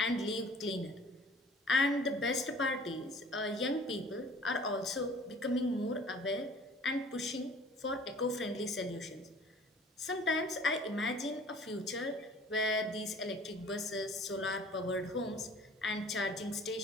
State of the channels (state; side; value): normal; both; correlation 0.50